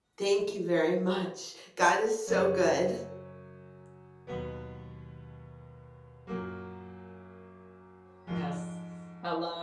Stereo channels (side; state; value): both; identical; correlation 1.00